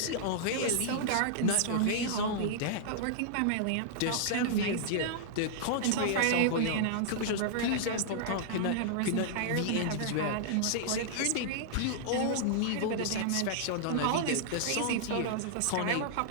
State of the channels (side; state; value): both; different; correlation -0.01